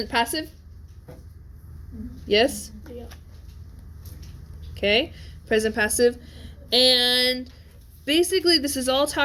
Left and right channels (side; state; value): both; identical; correlation 1.00